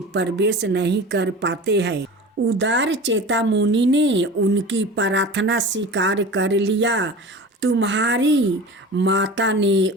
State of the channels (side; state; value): both; normal; correlation 0.35